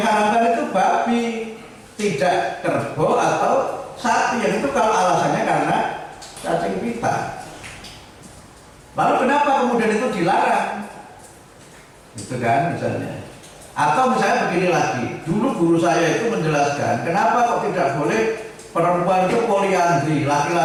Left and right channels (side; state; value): both; identical; correlation 1.00